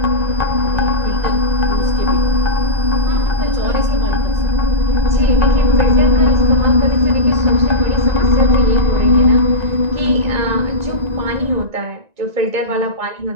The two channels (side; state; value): left; late; 1.9 ms